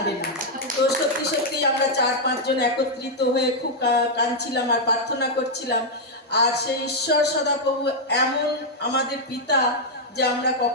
না। তো সত্যি সত্যি আমরা 4-5 জন একত্রিত হয়ে খুব কাঁদছিলাম আর প্রার্থনা করছিলাম। আর সেই ঈশ্বর সদাপ্রভু এমন আমাদের পিতা যে আমরা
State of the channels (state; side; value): normal; both; correlation -0.02